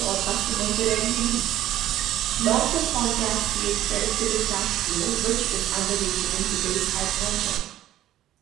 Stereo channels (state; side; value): quieter; left; 13.3 dB